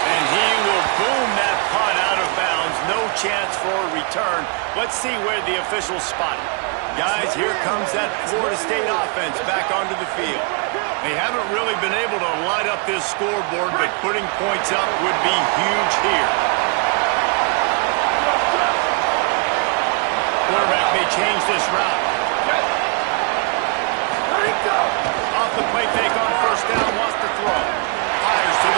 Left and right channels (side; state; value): left; quieter; 36.1 dB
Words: he will boom that punt out of bounds. No chance for a return. Let's see where the officials spot it. Guys, here comes that Florida State offense back onto the field. They haven't really been able to light up this scoreboard, but putting points up would be huge here. Quarterback may change this route. Off the play fake on first down, wants to throw. Fires to